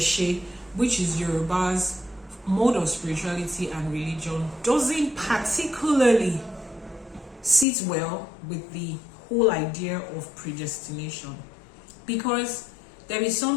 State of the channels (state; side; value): drops out; right; at 7.7 s